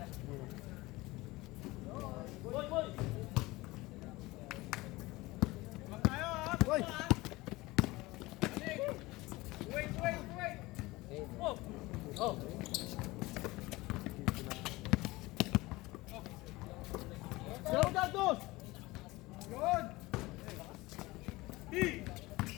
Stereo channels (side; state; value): right; quieter; 20.7 dB